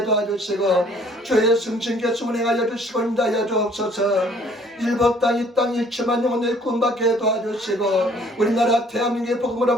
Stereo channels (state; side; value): normal; both; correlation 0.58